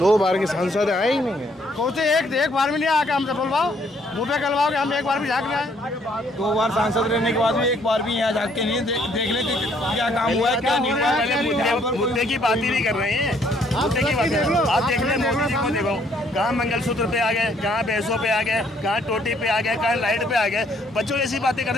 बार के सांसद आए ही नहीं है। कौन से एक बार भी नहीं आके हमसे बोलवाओ, मुँह पे कलवाओ कि हम एक बार भी झाँक रहे हैं। 2 बार सांसद रहने के बाद भी एक बार भी यहाँ झाँक के नहीं देख ले क्या काम हुआ है, क्या नहीं हुआ है। मुद्दे की बात ही नहीं कर रहे हैं, मुद्दे की बात कर। आप देख लें, मोदी जी को देखो, कहाँ मंगलसूत्र पे आ गए, कहाँ भैंसों पे आ गए, कहाँ टोटी पे आ गए, कहाँ लाइट पे आ गए। बच्चों ऐसी बातें करते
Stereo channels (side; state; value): both; normal; correlation 0.66